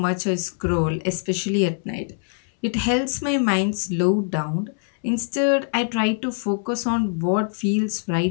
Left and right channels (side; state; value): right; silent; 63 dB below the other